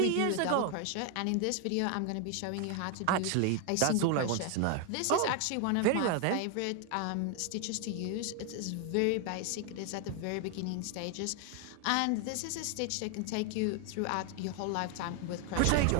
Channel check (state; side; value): different; both; correlation 0.01